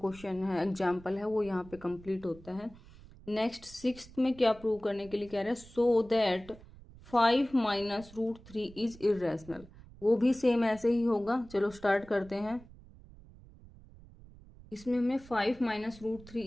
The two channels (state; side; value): noise; right; rumble, 21 dB below the sound